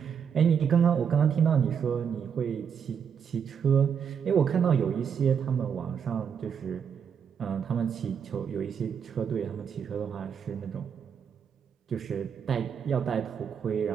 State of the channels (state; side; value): quieter; left; 7.3 dB